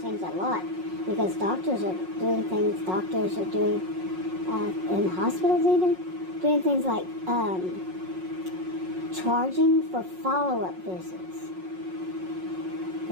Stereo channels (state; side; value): late; left; 5.5 ms